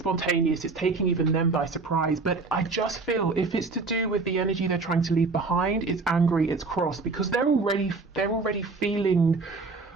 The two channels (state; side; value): quieter; left; 4.0 dB